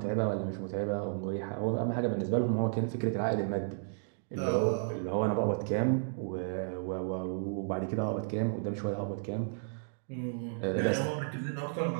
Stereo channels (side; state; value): left; silent; digital silence